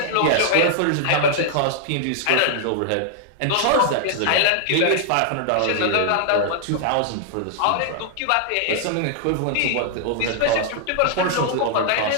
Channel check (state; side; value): different; both; correlation -0.01